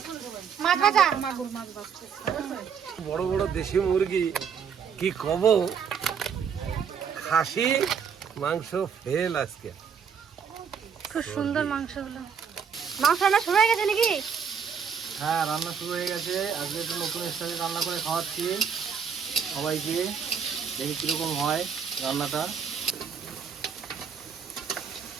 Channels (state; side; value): quieter; left; 6.9 dB